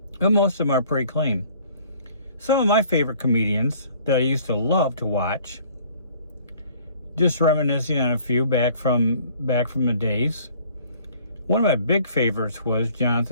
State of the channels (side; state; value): both; inverted; correlation -0.55